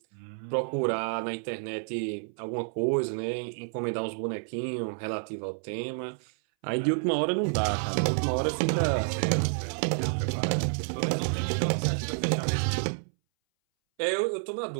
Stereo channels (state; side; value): silent; left; 58 dB below the other